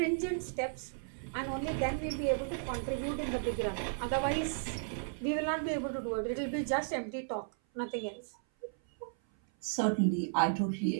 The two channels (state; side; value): silent; left; 55 dB below the other